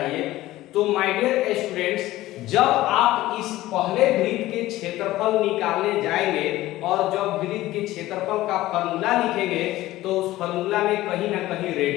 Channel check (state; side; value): quieter; right; 16.4 dB